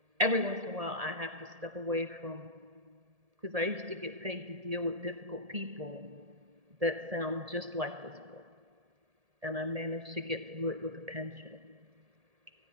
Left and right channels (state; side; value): late; left; 1.7 ms